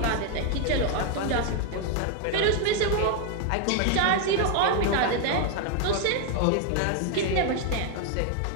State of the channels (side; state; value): both; different; correlation 0.01